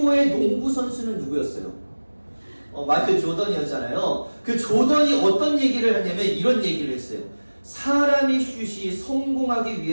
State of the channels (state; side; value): inverted; both; correlation -1.00